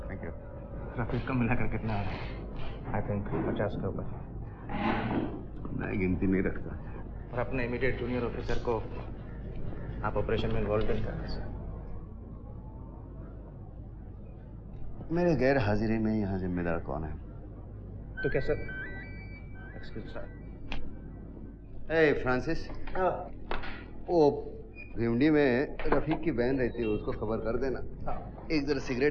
Thank you. Rafiq का मिलाकर कितना है? आई थिंक 50 के ऊपर। मैं गिनती नहीं रखता। और अपने इमीडिएट जूनियर ऑफिसर को आप ऑपरेशन में इन्वॉल्व नहीं करते सर। मेरे गैर हाजिरी में यहाँ जिम्मेदार कौन है? तो क्या सर? Excuse sir. ए फ्रांसिस, वो भिवंडी में रफीक की बहन रहती है, उसको खबर कर देना। एक जरा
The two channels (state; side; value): identical; both; correlation 1.00